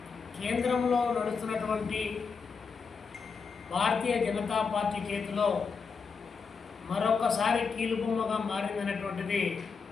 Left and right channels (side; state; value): right; quieter; 5.4 dB